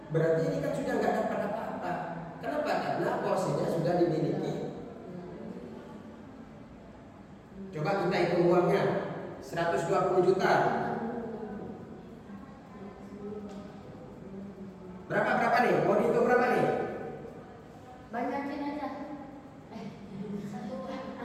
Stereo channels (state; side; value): identical; both; correlation 1.00